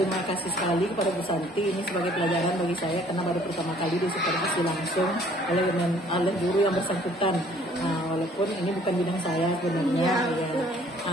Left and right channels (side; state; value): both; normal; correlation 0.58